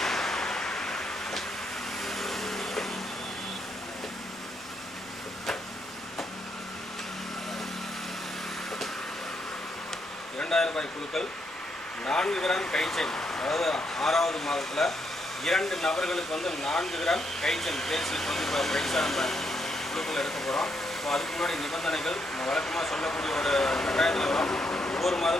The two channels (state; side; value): normal; both; correlation 0.77